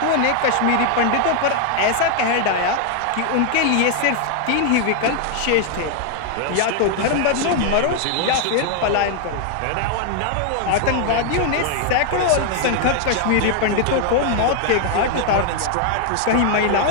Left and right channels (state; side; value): different; both; correlation 0.00